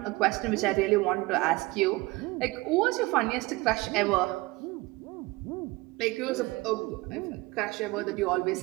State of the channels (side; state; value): left; quieter; 22.1 dB